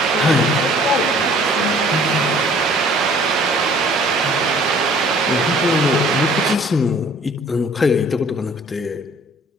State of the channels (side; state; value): both; normal; correlation 0.54